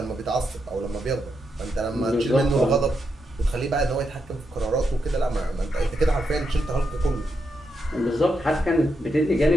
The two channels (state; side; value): normal; both; correlation 0.83